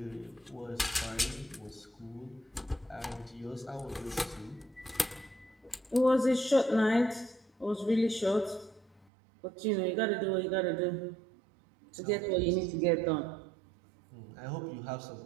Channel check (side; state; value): left; drops out; at 9.1 s